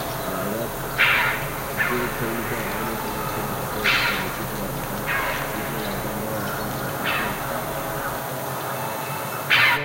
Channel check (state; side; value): identical; both; correlation 1.00